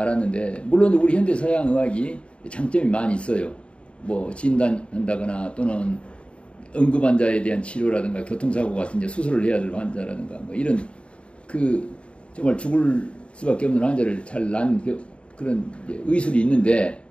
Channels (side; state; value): right; late; 0.059 ms